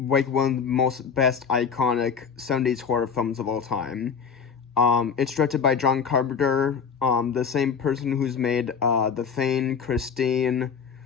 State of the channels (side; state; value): right; quieter; 6.3 dB